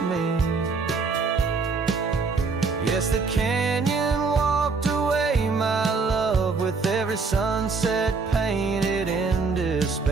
me. Yes, the canyon walked away, my love, with every sunset painted in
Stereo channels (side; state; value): left; quieter; 4.5 dB